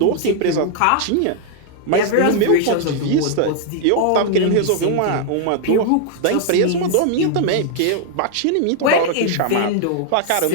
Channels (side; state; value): both; different; correlation -0.01